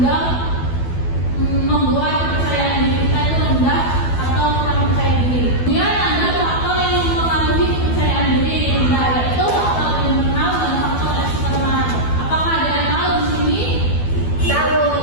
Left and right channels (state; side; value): late; right; 12 ms